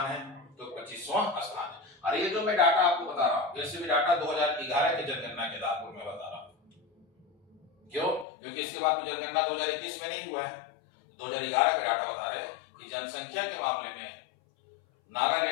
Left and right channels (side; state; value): right; drops out; at 8.2 s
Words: है? तो 25वां स्थान है। और ये जो मैं डाटा आपको बता रहा हूं, ये भी डाटा 2011 की जनगणना के आधार पर मैं बता रहा हूं। क्यों? क्योंकि इसके बाद तो जनगणना 2021 में नहीं हुआ है। 2011 के डाटा बता रहे हैं कि जनसंख्या के मामले में